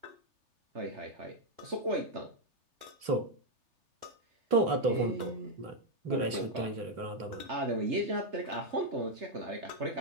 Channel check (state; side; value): late; left; 3.3 ms